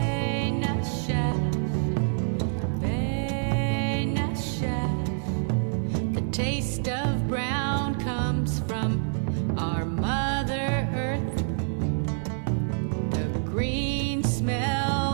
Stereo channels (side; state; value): left; silent; digital silence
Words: The taste of brown comes from our Mother Earth, the green